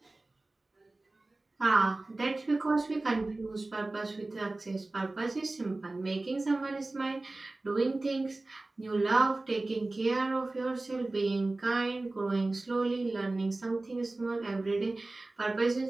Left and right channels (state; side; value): quieter; left; 3.0 dB